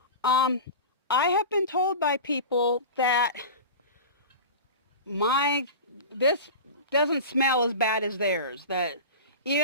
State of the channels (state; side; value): inverted; both; correlation -0.30